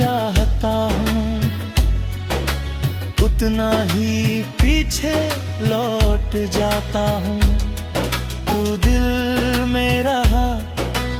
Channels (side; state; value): both; identical; correlation 1.00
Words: हूँ, उतना ही पीछे लौट जाता हूँ। तू दिल में रहा